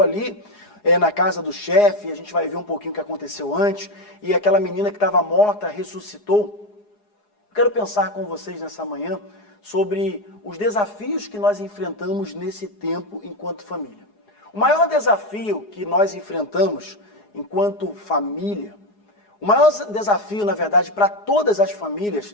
ali na casa do chefe, a gente vai ver um pouquinho o que aconteceu antes, e aquela menina que estava morta ressuscitou. Eu quero pensar com vocês nessa manhã sobre os desafios que nós enfrentamos nesse tempo enquanto família. O maior desafio que nós enfrentamos enquanto família, o maior desafio, na verdade, para todas as famílias,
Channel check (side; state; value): right; late; 4.8 ms